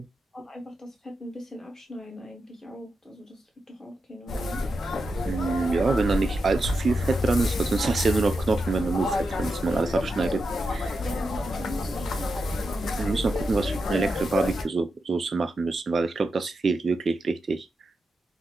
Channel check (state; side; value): normal; both; correlation 0.87